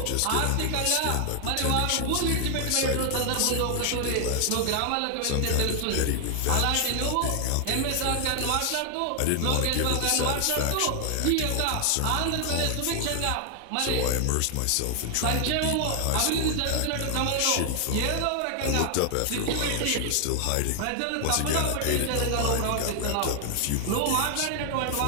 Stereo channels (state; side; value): different; both; correlation 0.00